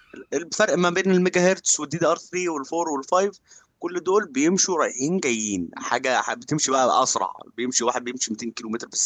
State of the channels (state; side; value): identical; both; correlation 1.00